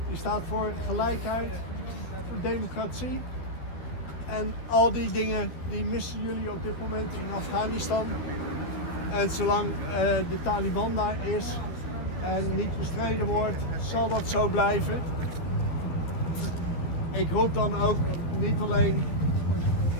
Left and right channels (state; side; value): late; right; 12 ms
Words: Die staat voor gelijkheid, voor democratie. En al die dingen die missen jullie op dit moment in Afghanistan. En zolang de Taliban daar is en niet bestreden wordt, zal dat zo blijven. Ik roep dan ook niet alleen